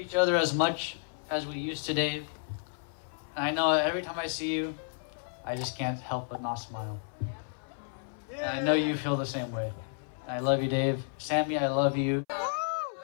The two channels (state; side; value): silent; right; 57 dB below the other